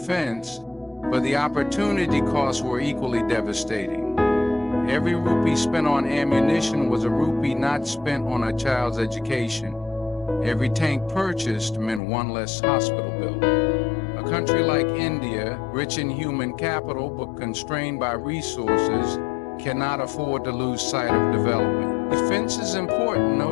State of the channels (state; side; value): drops out; right; at 12.0 s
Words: but the opportunity costs were equally devastating. Every rupee spent on ammunition was a rupee not spent on a child's education. Every tank purchased meant one less hospital bill. A country like India, rich in human capital but constrained by resources, cannot afford to lose sight of development. Defense is important, no